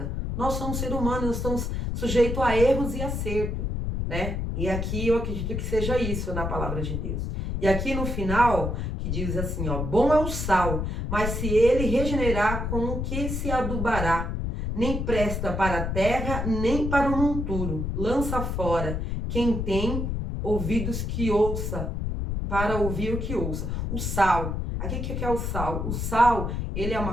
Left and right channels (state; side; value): noise; left; rumble, 2 dB below the sound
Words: Nós somos seres humanos, nós estamos sujeitos a erros e acerto, né? E aqui eu acredito que seja isso na palavra de Deus. E aqui no final, que diz assim, ó, bom é o sal, mas se ele regenerar, com o que se adubará? Nem presta para a terra, nem para o monturo. Lança fora. Quem tem ouvidos que ouça, para ouvir o que ouça. O sal. Aqui o que é o sal? O sal, ele é